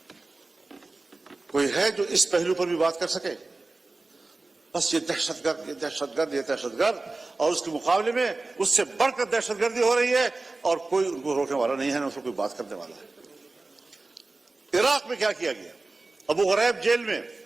کوئی ہے جو اس پہلو پر بھی بات کر سکے؟ بس یہ دہشت گرد، یہ دہشت گرد، یہ دہشت گرد، اور اس کے مقابلے میں اس سے بڑھ کر دہشت گردی ہو رہی ہے اور کوئی ان کو روکنے والا نہیں ہے، نہ اس کو کوئی بات کرنے والا ہے. عراق میں کیا کیا گیا؟ ابو غریب جیل میں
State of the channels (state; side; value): quieter; left; 3.4 dB